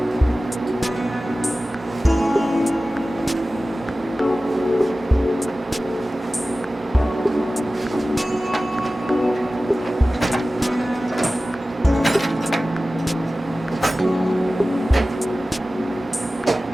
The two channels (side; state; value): both; normal; correlation 0.96